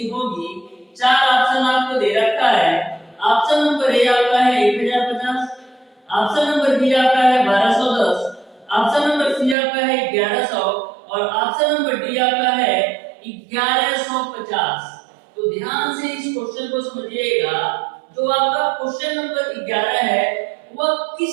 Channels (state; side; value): drops out; left; at 9.6 s